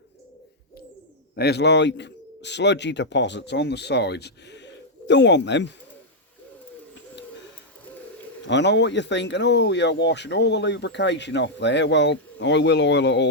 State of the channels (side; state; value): both; normal; correlation -0.03